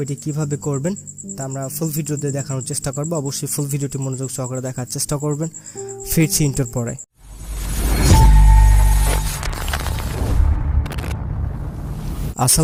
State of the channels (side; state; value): both; identical; correlation 1.00